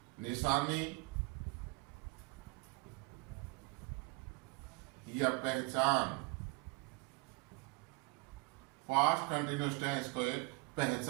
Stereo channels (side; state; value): left; quieter; 27.1 dB